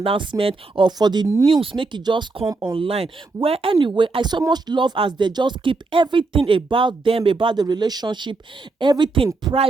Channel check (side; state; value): left; quieter; 3.7 dB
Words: or for the news, make it just come online. Where anyway, I so much love as they just keep everything about them, about the relationship, everything